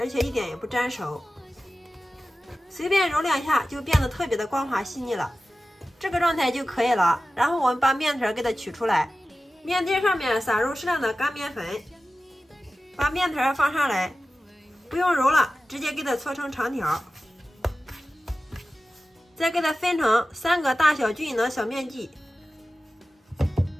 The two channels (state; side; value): normal; both; correlation 0.95